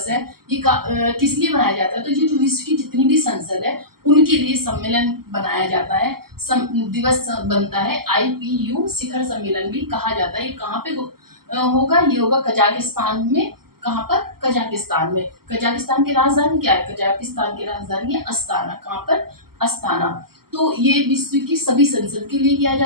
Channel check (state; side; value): late; left; 0.94 ms